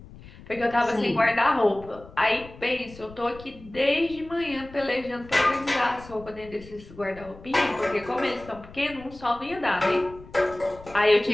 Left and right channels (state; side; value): noise; left; rumble, 19 dB below the sound